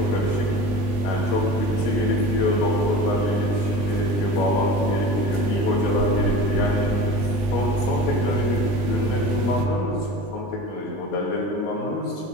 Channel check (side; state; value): right; late; 20 ms